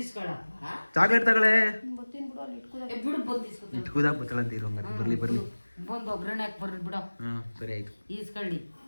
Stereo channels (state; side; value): inverted; both; correlation -1.00